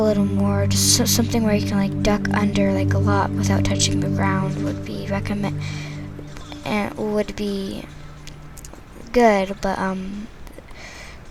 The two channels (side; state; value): both; identical; correlation 1.00